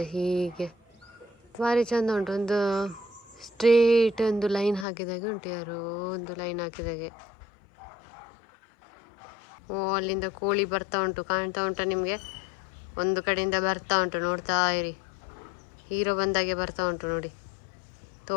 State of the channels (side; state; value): right; drops out; at 4.9 s